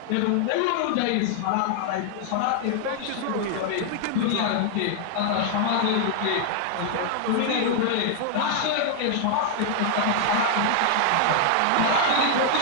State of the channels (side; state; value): both; different; correlation 0.00